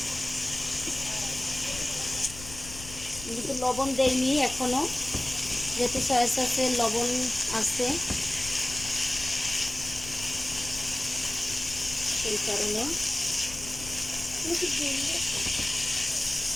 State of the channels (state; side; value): noise; left; rumble, 13 dB below the sound